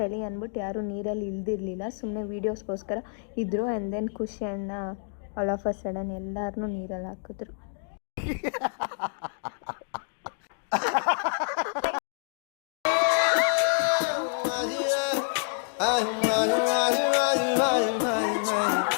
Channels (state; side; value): silent; right; digital silence